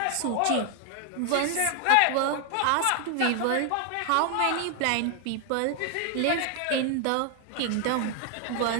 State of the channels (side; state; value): both; different; correlation 0.00